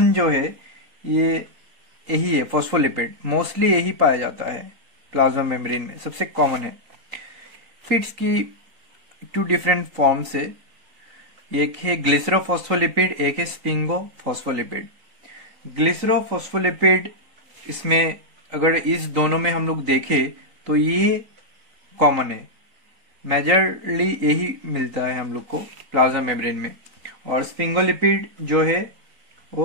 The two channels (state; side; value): late; left; 3.8 ms